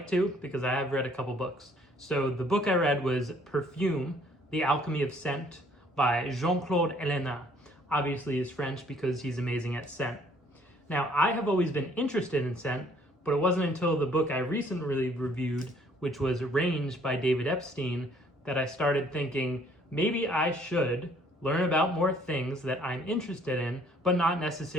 to because I have read a couple books. So the book I read was Perfume, The Alchemy of Scent by Claude Ellena. Obviously he's French because he's amazing at scent. Now, I have always been interested in scent, but it wasn't until the book I recently reviewed, which was Range by David Epstein, that I started thinking maybe I should learn about more things that I'm interested in, but not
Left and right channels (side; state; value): both; normal; correlation 0.61